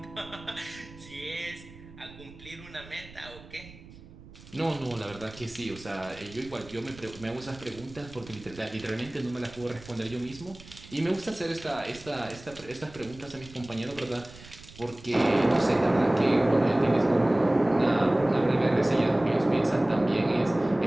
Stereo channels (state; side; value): noise; right; rumble, 19 dB below the sound